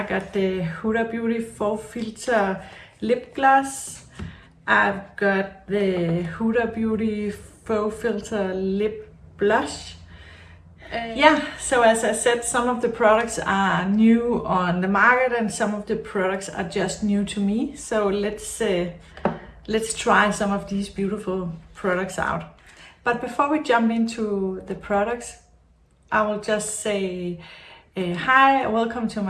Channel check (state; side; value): identical; both; correlation 1.00